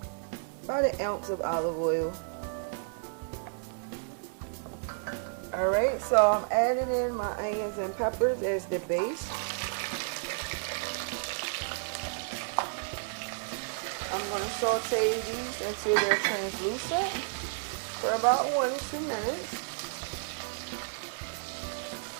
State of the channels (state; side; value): silent; left; 55 dB below the other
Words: an ounce of olive oil. Alright, so I'm adding in my onions and peppers as the base. I'm going to saute these until they're translucent for about 1 to 2 minutes.